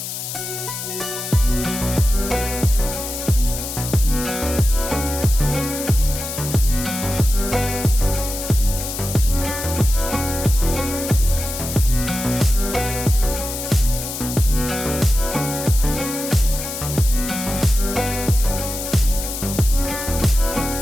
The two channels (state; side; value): noise; left; hiss, 6 dB below the sound